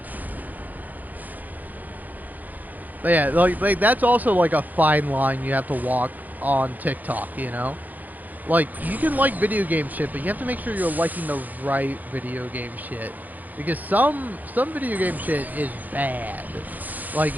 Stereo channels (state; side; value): late; left; 0.082 ms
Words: But yeah, like that's also like a fine line you have to walk on TikTok, you know? Like, you can like video game shit, but you have to make sure you're liking the right video game shit. Because some video game shit is bad. Like,